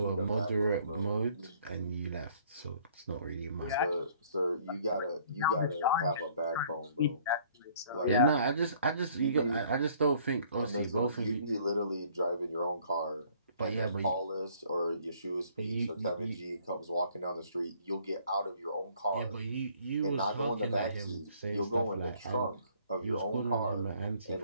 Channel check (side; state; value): both; inverted; correlation -0.60